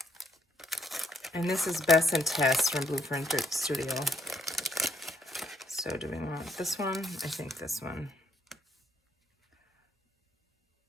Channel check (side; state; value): both; normal; correlation 0.73